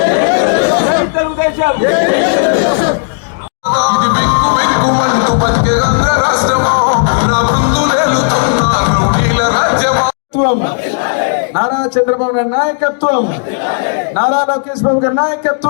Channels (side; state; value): right; silent; digital silence